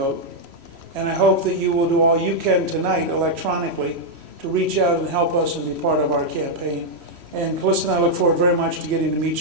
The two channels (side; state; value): left; late; 3.0 ms